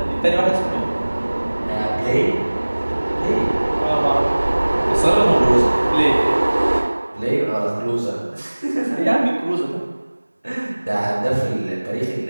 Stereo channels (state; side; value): inverted; both; correlation -1.00